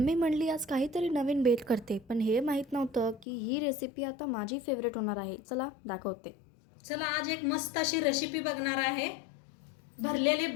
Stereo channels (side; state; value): right; drops out; at 3.2 s